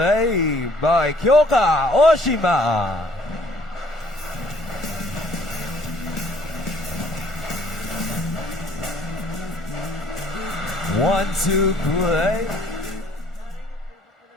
by Kyoka Oshima. One-two play.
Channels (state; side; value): normal; both; correlation 0.59